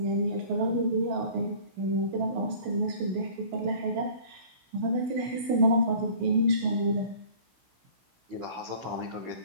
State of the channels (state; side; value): late; left; 16 ms